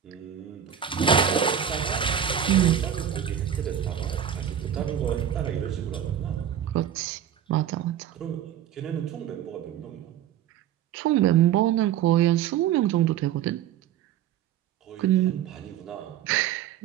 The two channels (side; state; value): left; quieter; 9.7 dB